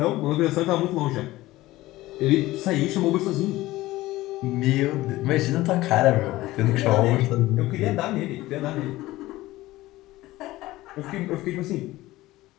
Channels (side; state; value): right; quieter; 17.6 dB